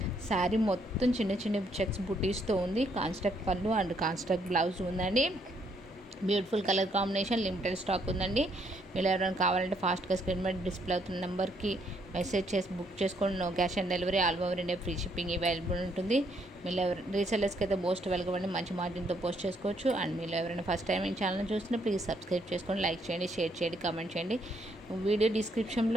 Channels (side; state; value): both; normal; correlation 0.71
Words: శారీ మొత్తం చిన్న చిన్న చెక్స్ బుటీస్తో ఉంది. కాన్స్ట్రక్ట్ పళ్ళు అండ్ కాన్స్ట్రక్ట్ బ్లౌజ్ ఉందండి. Beautiful colour combination, limited stock ఉందండి. మీరు ఎవరైనా కావాలంటే ఫాస్ట్గా స్క్రీన్ మీద డిస్ప్లే అవుతున్న నెంబర్కి మెసేజ్ చేసి బుక్ చేసుకోండి. No cash on delivery, all over India free shipping available ఉంటుంది. మీరు రీసెల్లర్స్కి అయితే మోస్ట్ వెల్కమ్ అండి, మంచి మార్జిన్తో పోస్ట్ చేసుకోవచ్చు. అండ్ మీరు ఎవరైనా ఫస్ట్ టైం ఈ ఛానల్ చూస్తున్నా ప్లీజ్ సబ్స్క్రైబ్ చేసుకోండి, లైక్ చేయండి, షేర్ చేయండి, కామెంట్ చేయండి. వీడియో